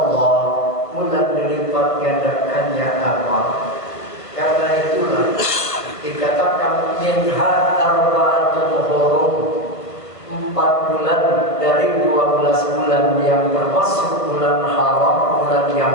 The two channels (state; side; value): late; right; 1.5 ms